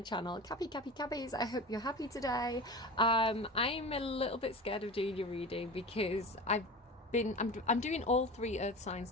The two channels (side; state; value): both; normal; correlation 0.32